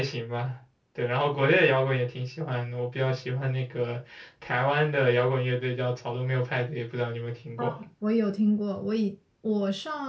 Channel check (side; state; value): both; identical; correlation 1.00